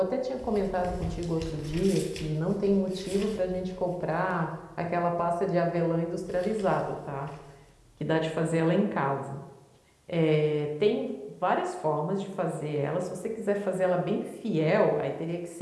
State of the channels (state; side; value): identical; both; correlation 1.00